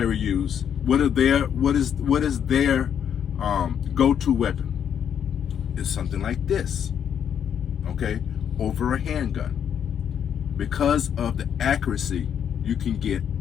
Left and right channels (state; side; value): quieter; right; 8.6 dB